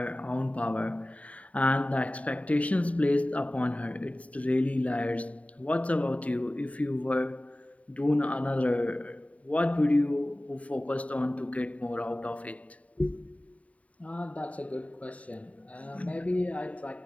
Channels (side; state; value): right; late; 0.067 ms